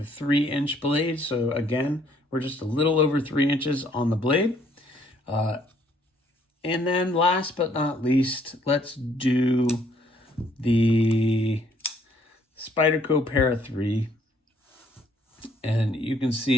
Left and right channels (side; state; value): both; normal; correlation 0.64